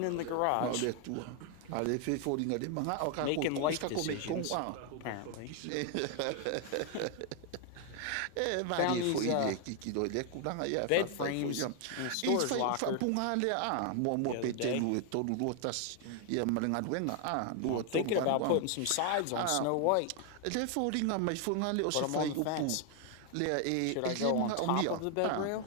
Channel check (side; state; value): both; different; correlation 0.00